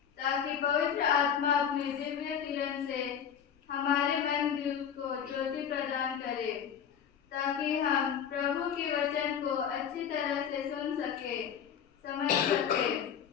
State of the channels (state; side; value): quieter; right; 8.2 dB